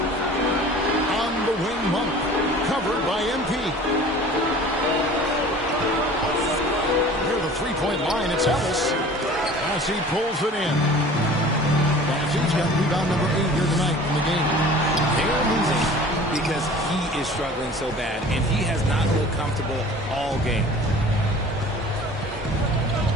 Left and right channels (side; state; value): both; normal; correlation 0.44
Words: On the wing, Monk. Covered by MP. Near the three-point line, it's Ellis. As he pulls it in. He's got rebound number 8 here tonight in the game. They're losing because he is struggling so bad, and he has not looked comfortable all game.